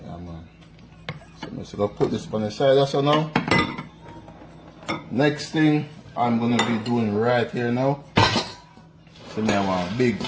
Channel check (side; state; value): both; identical; correlation 1.00